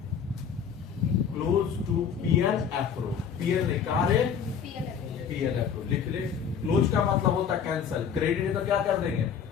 to PL एप्रो। पीएल नहीं, कहा रे, पीएल एप्रो लिख ले। क्लोज का मतलब होता है कैंसल, क्रेडिट है तो क्या कर देंगे,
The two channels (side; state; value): right; quieter; 7.3 dB